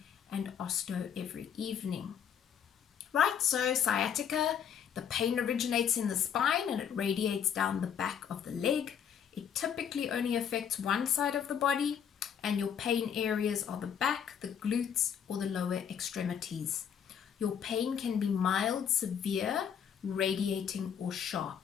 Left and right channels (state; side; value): quieter; right; 8.3 dB